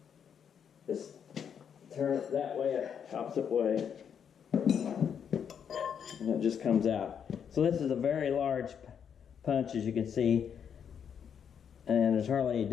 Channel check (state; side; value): quieter; right; 7.8 dB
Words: Just turn it that way, opposite way. And it just comes out. So this is a very large punch, as you can see. And there's hardly any